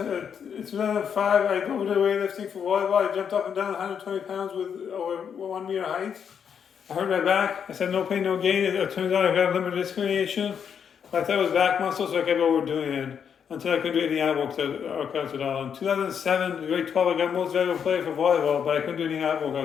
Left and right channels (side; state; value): right; quieter; 7.5 dB